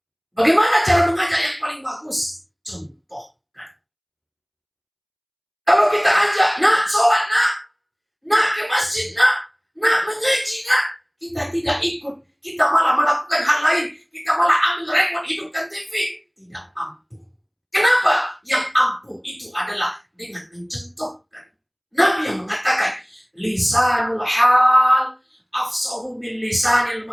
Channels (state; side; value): identical; both; correlation 1.00